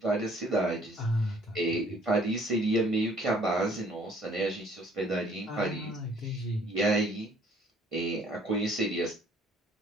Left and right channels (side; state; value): both; normal; correlation 0.59